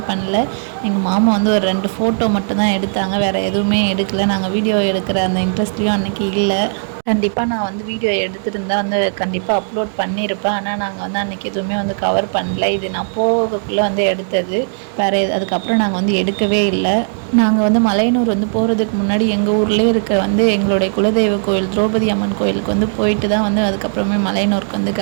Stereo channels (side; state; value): left; silent; digital silence